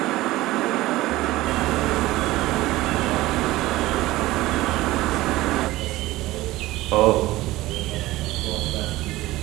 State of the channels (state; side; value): quieter; left; 17.7 dB